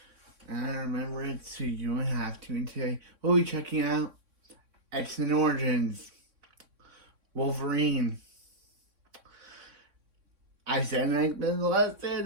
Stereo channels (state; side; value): late; left; 3.6 ms